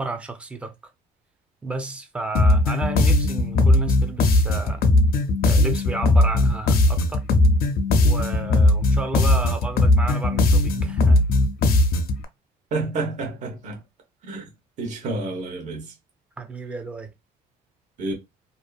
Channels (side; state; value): both; normal; correlation 0.56